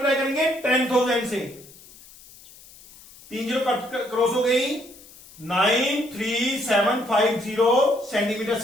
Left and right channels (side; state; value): left; noise; hiss, 22 dB below the sound